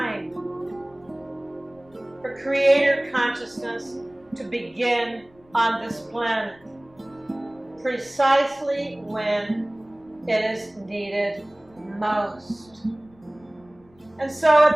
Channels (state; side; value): noise; left; rumble, 30 dB below the sound